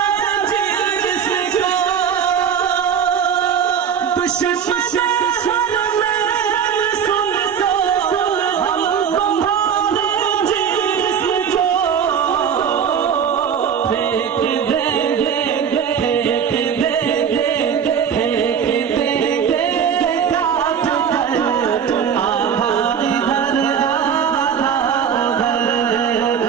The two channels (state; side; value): quieter; left; 7.7 dB